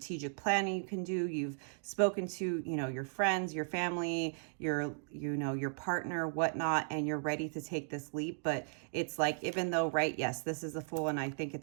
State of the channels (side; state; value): left; silent; digital silence